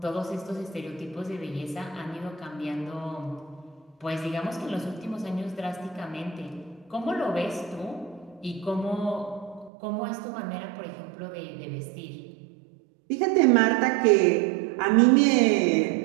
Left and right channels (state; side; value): drops out; left; at 9.7 s